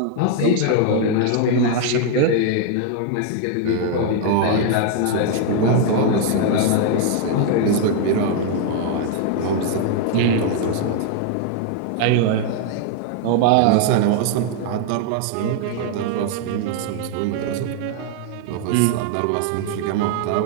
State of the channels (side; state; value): both; different; correlation 0.00